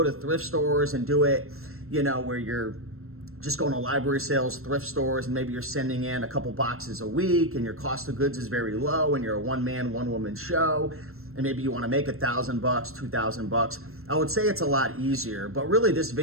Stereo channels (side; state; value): left; late; 0.62 ms